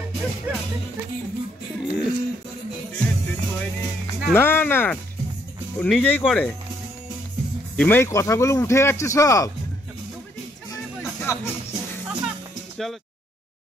না না, ও নিজেই করে। এই কথাগুলো উঠে যাচ্ছে সব। চলো।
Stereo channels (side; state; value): both; normal; correlation 0.70